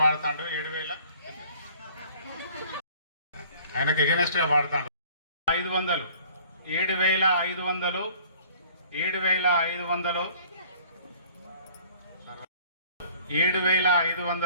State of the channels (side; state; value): both; inverted; correlation -0.53